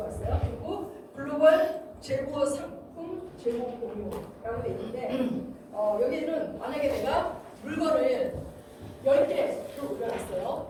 있어요. 그리고 글로벌 재고 상품 재고 공유라고 돼 있는데 여기는 만약에 내가 물건을 10개를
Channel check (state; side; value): identical; both; correlation 1.00